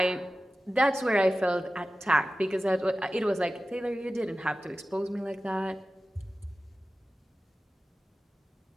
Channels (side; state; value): both; normal; correlation 0.95